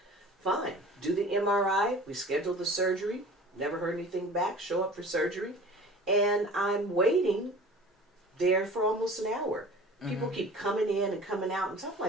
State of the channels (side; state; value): both; normal; correlation 0.42